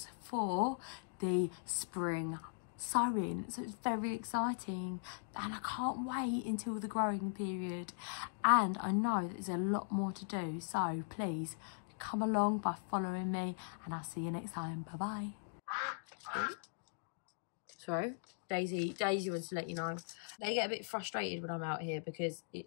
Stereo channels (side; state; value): right; silent; digital silence